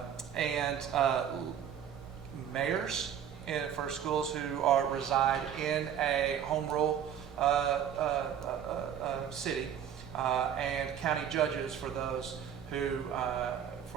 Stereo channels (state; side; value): quieter; left; 9.0 dB